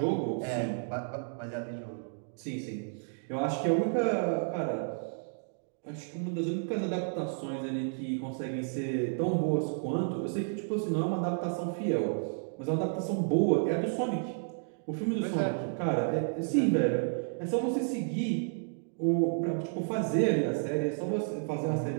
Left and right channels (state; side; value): silent; left; digital silence